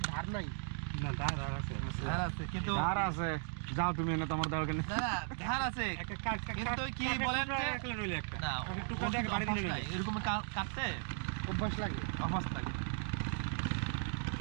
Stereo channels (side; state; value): left; silent; 53 dB below the other